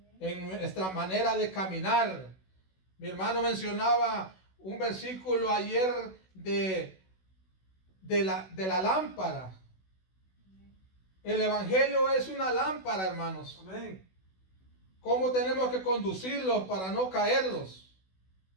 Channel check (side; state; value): right; late; 16 ms